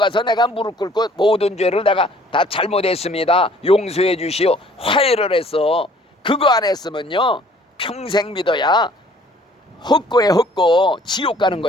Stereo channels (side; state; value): both; normal; correlation 0.56